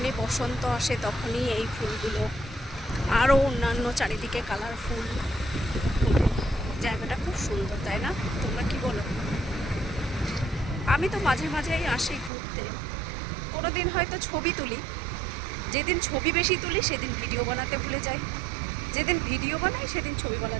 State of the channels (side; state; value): left; drops out; at 12.3 s